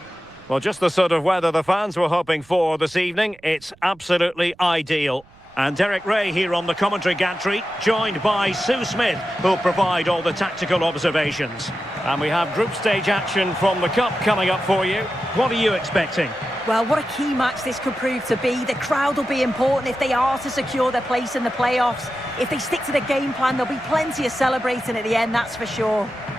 Well, just the sort of weather the fans were hoping for this evening. It's absolutely ideal. And Derek Ray here on the commentary gantry, joined by Sue Smith, who'll provide all the tactical observations. And we have group stage action from the Cup coming up for you. What are you expecting? Well, what a key match this could prove to be. The crowd will be important if they are to secure their place in the playoffs. If they stick to the game plan, there'll be plenty of celebrating at the end, that's for sure.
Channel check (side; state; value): right; noise; rumble, 28 dB below the sound